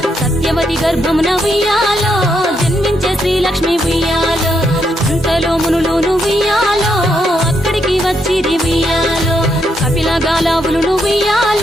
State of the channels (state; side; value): normal; both; correlation 0.78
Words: సత్యవతి గర్భమున ఉయ్యాలో జన్మించే శ్రీలక్ష్మి ఉయ్యాలో అంతలో మునులును ఉయ్యాలో అక్కడికి వచ్చిరి ఉయ్యాలో కపిల గాలావులును